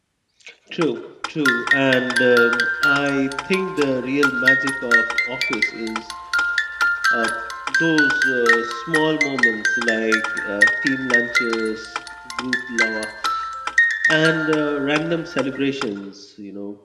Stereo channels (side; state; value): both; identical; correlation 1.00